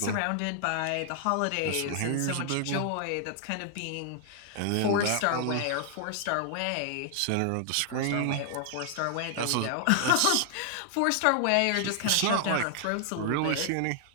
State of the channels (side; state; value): both; different; correlation 0.00